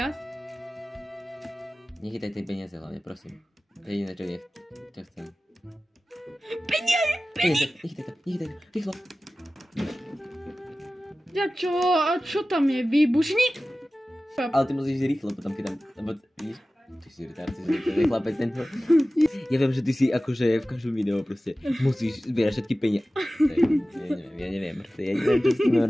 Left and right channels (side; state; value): both; normal; correlation 0.96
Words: Nechytaj tie peniaze hlavne, prosím. To je jediné, čo chcem. Peniaze! Nechytaj to, rýchlo. Ja čo? A čo tam je? Výbušník? Ale ty musíš rýchlo potom, keď tam... Lebo, vidíš? Ty si retard, ty si chlapec tento. Ja viem, že ty si akože v každom videu proste musíš zbierať všetky peniaze. Ja neviem, proste ja neviem, čo s tým